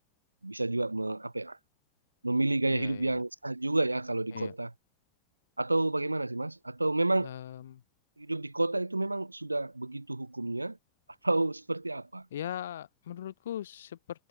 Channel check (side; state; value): both; inverted; correlation -0.97